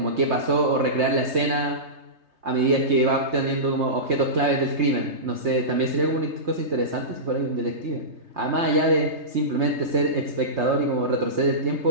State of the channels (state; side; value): late; left; 3.3 ms